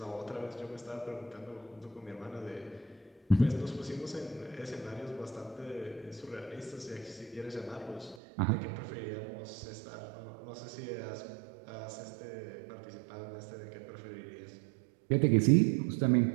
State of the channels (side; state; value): left; drops out; at 8.2 s